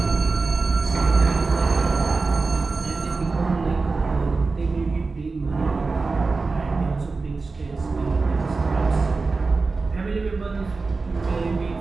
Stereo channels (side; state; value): left; quieter; 4.0 dB